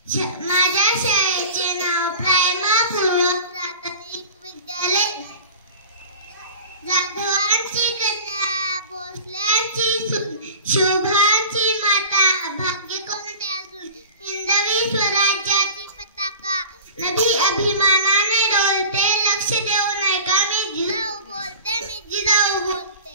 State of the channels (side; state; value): both; inverted; correlation -0.39